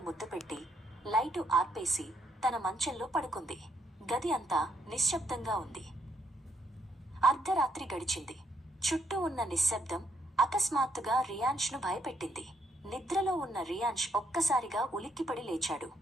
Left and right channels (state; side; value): normal; both; correlation 0.74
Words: ముద్దు పెట్టి లైటు ఆర్పేసి తన మంచంలో పడుకుంది. గది అంతా నిశ్శబ్దంగా ఉంది. అర్ధరాత్రి గడిచింది. చుట్టూ ఉన్న నిశ్శబ్దం అకస్మాత్తుగా రియాన్ష్ను భయపెట్టింది. నిద్రలో ఉన్న రియాన్ష్ ఒక్కసారిగా ఉలిక్కిపడి లేచాడు.